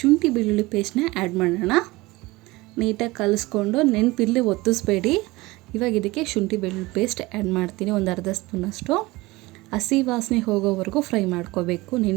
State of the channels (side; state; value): left; quieter; 21.2 dB